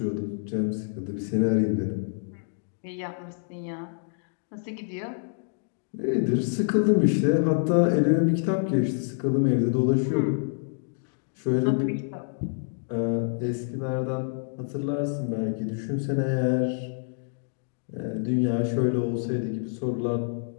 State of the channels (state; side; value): silent; right; digital silence